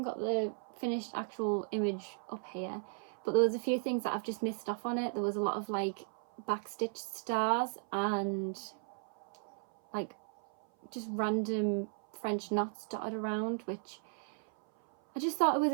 got the finished actual image up here, but there was a few things that I've just missed off on it. There was a lot of like backstitched stars and like just random French knots dotted around, which I just thought it was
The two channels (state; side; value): silent; left; 54 dB below the other